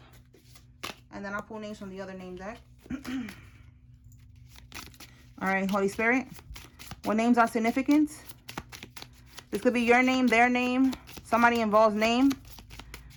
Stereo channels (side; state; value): both; identical; correlation 1.00